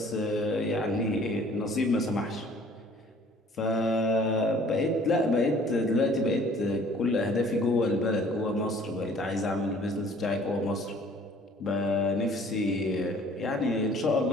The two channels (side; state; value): both; normal; correlation 0.54